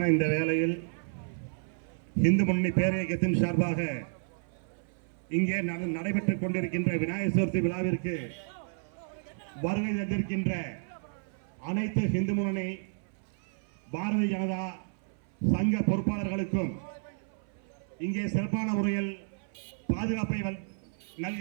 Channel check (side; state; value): left; silent; 57 dB below the other